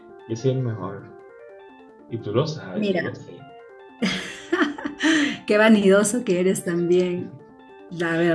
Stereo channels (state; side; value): identical; both; correlation 1.00